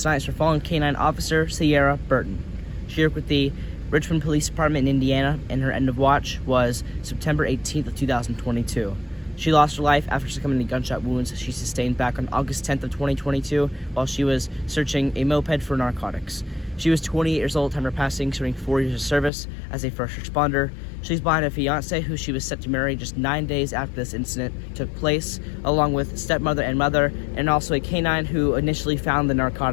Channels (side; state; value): right; drops out; at 19.3 s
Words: is for fallen K-9 officer Seara Burton. She worked with the Richmond Police Department in Indiana, and her end of watch was September 18th of 2022. She lost her life after succumbing to gunshot wounds she sustained back on August 10th of 2022 while she was searching a moped for narcotics. She was 28 years old at the time of her passing, serving 4 years of service as a first responder. She's behind a fiance who she was set to marry just 9 days after this incident took place, along with stepmother and mother, and also a K-9 who initially found the